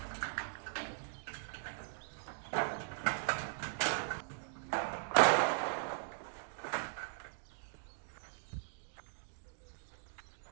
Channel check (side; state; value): left; silent; digital silence